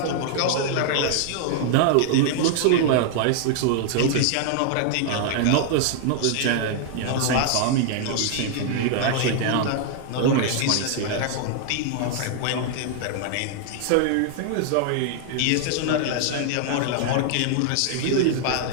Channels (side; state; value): both; different; correlation 0.00